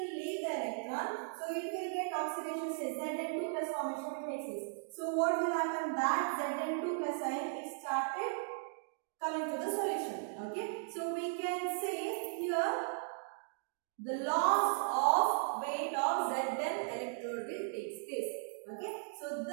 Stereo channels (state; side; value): silent; left; digital silence